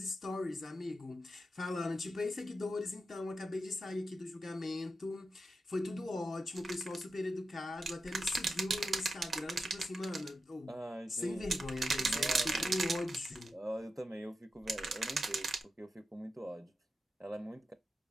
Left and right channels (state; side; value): normal; both; correlation 0.88